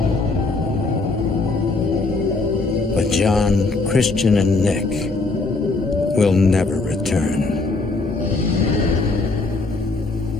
But John, Christian, and Nick will never return.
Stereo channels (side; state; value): right; quieter; 3.5 dB